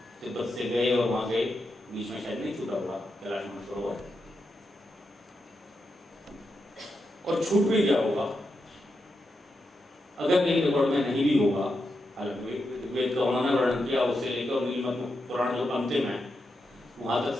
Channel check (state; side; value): normal; both; correlation 0.86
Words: तिब्बत से गए और वहां गए, बीच में शायद नहीं छूटा हुआ कैलाश मानसरोवर, और छूट भी गया होगा अगर कहीं रिकॉर्ड में नहीं भी होगा। हालांकि वेद का उन्होंने वर्णन किया, उससे लेकर नीलमणि पुराण जो अंतिम है वहां तक